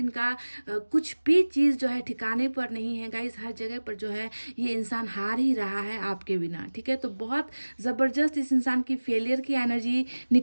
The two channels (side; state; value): both; inverted; correlation -1.00